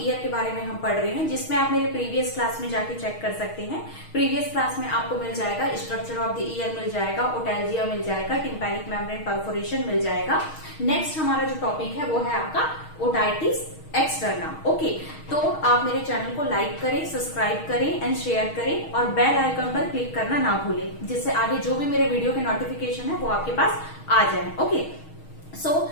year के बारे में हम पढ़ रहे हैं, जिसमें आप मेरे प्रीवियस क्लास में जाके चेक कर सकते हैं। प्रीवियस क्लास में आपको मिल जाएगा स्ट्रक्चर ऑफ द ईयर मिल जाएगा, ओटैल्जिया मिल जाएगा, टिम्पैनिक मेम्ब्रेन परफोरेशन मिल जाएगा। नेक्स्ट हमारा जो टॉपिक है वो है आपका ओटाइटिस एक्सटर्ना, ओके। तो आप मेरे चैनल को लाइक करें, सब्सक्राइब करें एंड शेयर करें और बेल आइकन पर क्लिक करना ना भूलें, जिससे आगे जो भी मेरे वीडियो के नोटिफिकेशन है वो आपके पास आ जाए, ओके। सो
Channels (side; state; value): right; late; 6.4 ms